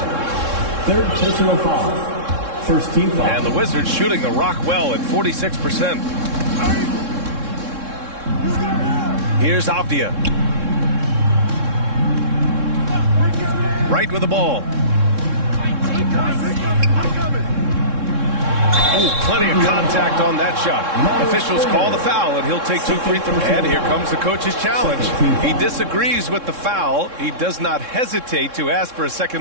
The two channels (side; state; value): left; late; 3.6 ms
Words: Third personal foul. First team foul. And the Wizards shooting the rock well at 46%. Here's Avdia. Right with the ball. Ooh, plenty of contact on that shot. Officials call the foul, and he'll take 2 free throws. And here comes the coach's challenge. He disagrees with the foul. He does not hesitate to ask for a